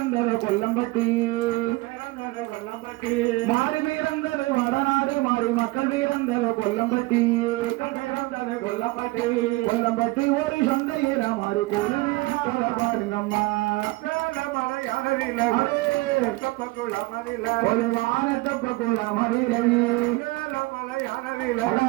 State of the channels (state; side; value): quieter; left; 21.7 dB